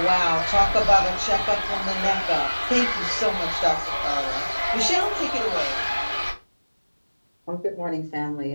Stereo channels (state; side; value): inverted; both; correlation -1.00